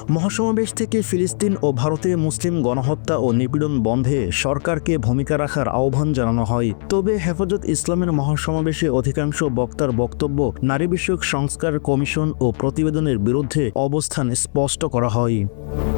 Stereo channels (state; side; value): silent; right; 64 dB below the other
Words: মহাসমাবেশ থেকে ফিলিস্তিন ও ভারতে মুসলিম গণহত্যা ও নিপীড়ন বন্ধে সরকারকে ভূমিকা রাখার আহ্বান জানানো হয়। তবে হেফাজত ইসলামের মহাসমাবেশে অধিকাংশ বক্তার বক্তব্য নারী বিষয়ক সংস্কার কমিশন ও প্রতিবেদনের বিরুদ্ধে অবস্থান স্পষ্ট করা হয়।